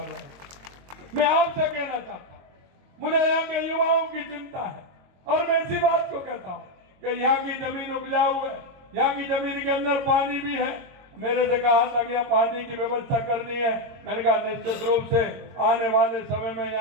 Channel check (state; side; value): late; left; 22 ms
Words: रहे हैं। मैं आपसे कहना चाहता हूं, मुझे यहाँ के युवाओं की चिंता है और मैं इसी बात को कहता हूँ कि यहाँ की जमीन उपजाऊ है, यहाँ की जमीन के अंदर पानी भी है। मेरे से कहा था कि यहाँ पानी की व्यवस्था करनी है, मैंने कहा निश्चित रूप से आने वाले समय में